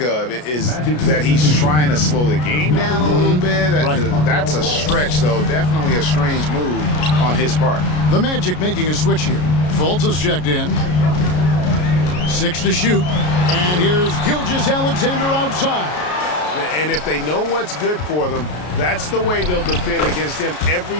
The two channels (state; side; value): late; right; 33 ms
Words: of is that he's trying to slow the game down a little bit. Right. That's a stretch, though. Definitely a strange move on his part. The Magic making a switch here. Fultz is checked in. 6 to shoot, and here's Gilgeous-Alexander outside. And if they know what's good for them, that's the way they'll defend against him every